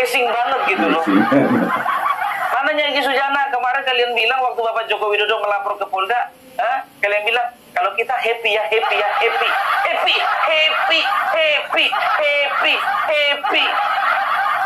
banget gitu loh. Mananya Egy Sujana kemarin kalian bilang waktu Bapak Joko Widodo melapor ke Polda, kalian bilang kalau kita happy ya, happy ya, happy.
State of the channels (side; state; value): both; identical; correlation 1.00